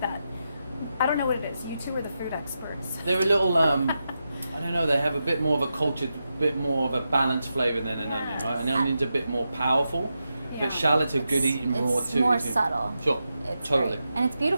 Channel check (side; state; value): both; inverted; correlation -0.88